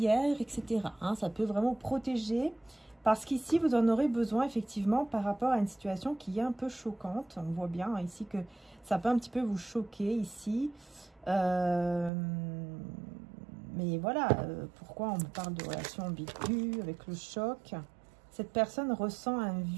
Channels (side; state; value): left; drops out; at 12.1 s